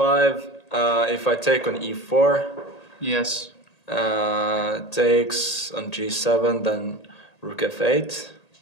if I take on e4, yes, takes on g7, then Rook f8.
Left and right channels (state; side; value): late; right; 1.8 ms